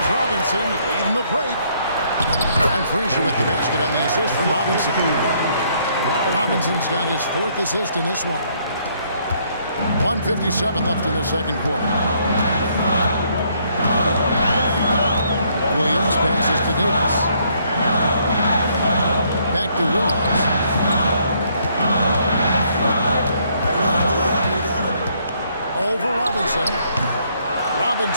Robinson leading the break. And Frazier with the basket on the assist from Robinson. Robinson's got his 4th assist in this one. 1:57 left in the second quarter. Williams passes to Davis. Back to Williams. Over Robinson.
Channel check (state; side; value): inverted; both; correlation -0.68